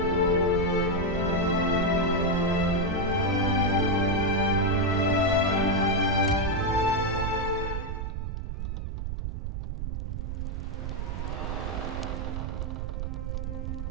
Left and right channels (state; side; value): noise; right; rumble, 3 dB below the sound